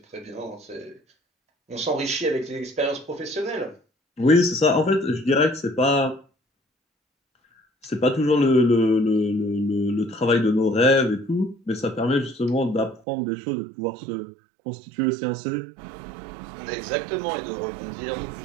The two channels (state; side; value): drops out; left; at 13.0 s